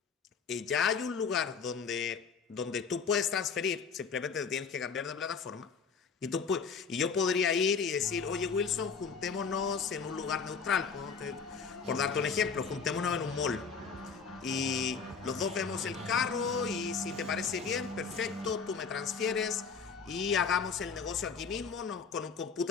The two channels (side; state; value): right; quieter; 5.7 dB